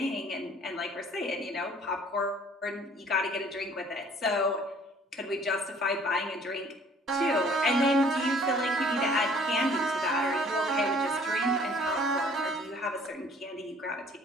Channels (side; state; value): both; normal; correlation 0.55